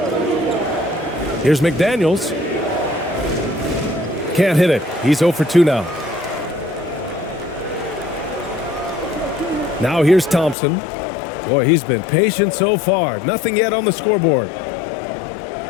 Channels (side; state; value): right; drops out; at 10.6 s